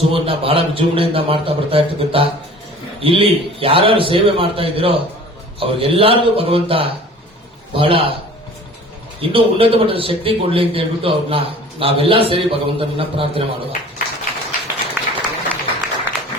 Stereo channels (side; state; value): both; normal; correlation 0.45